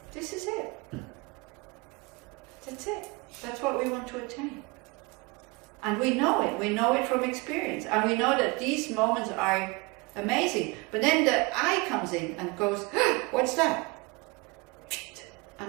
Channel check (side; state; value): left; quieter; 26.9 dB